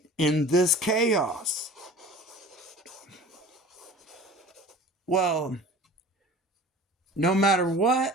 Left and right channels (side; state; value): both; normal; correlation 0.42